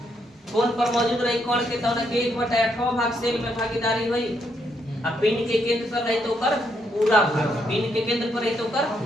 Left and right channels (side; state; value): both; normal; correlation 0.76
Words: कोण पर मौजूद रही कण के तो 1/8वां भाग सेल में भागीदारी हुई। अब पिंड के केंद्र पर रही तो कर पूरा भाग, पिंड के केंद्र पर रही तो कर